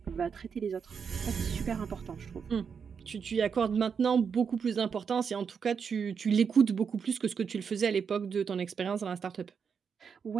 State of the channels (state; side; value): quieter; left; 6.4 dB